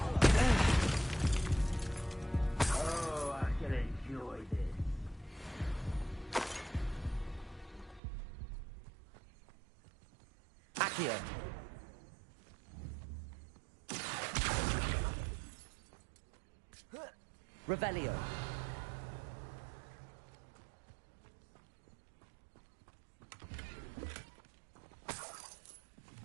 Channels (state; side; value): drops out; left; at 8.0 s